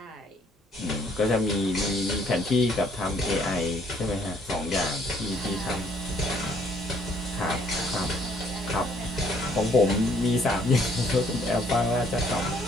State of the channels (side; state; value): both; normal; correlation 0.64